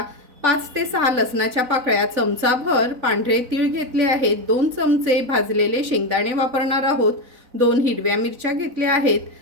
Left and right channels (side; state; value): left; late; 4.0 ms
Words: 5 ते 6 लसणाच्या पाकळ्या, चमचाभर पांढरे तीळ घेतले आहेत. 2 चमचे भाजलेले शेंगदाणे वापरणार आहोत. 2 हिरव्या मिरच्या घेतल्या आहेत.